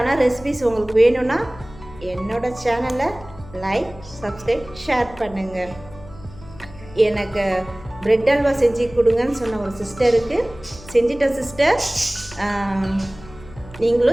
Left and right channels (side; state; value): left; noise; hum, 19 dB below the sound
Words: ரெசிபிஸ் உங்களுக்கு வேணும்னா என்னோட சேனலை லைக், சப்ஸ்கிரைப், ஷேர் பண்ணுங்கள். எனக்கு பிரெட் அல்வா செஞ்சு கொடுங்கன்னு சொன்ன ஒரு சிஸ்டருக்கு செஞ்சிட்டேன் சிஸ்டர்.